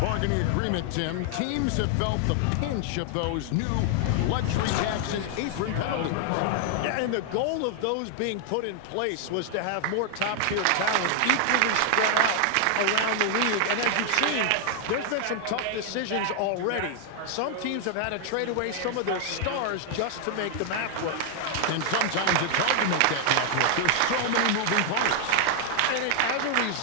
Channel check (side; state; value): both; different; correlation 0.00